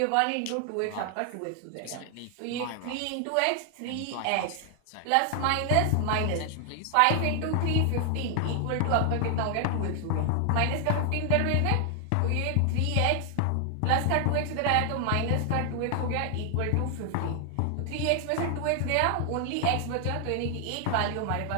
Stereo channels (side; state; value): both; different; correlation 0.00